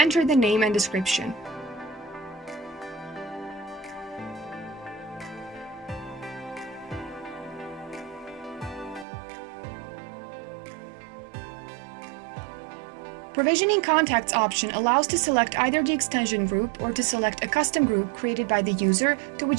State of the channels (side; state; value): left; drops out; at 9.1 s